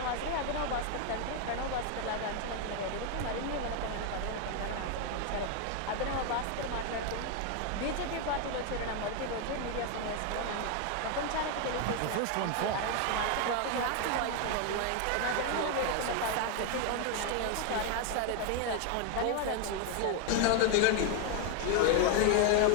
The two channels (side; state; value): both; different; correlation 0.01